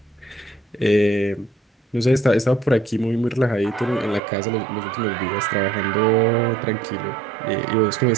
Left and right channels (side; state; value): left; drops out; at 4.2 s